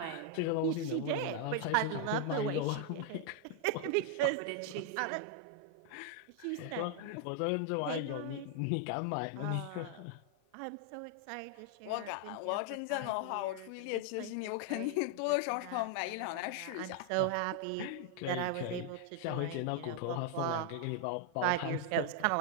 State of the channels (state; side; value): different; both; correlation 0.00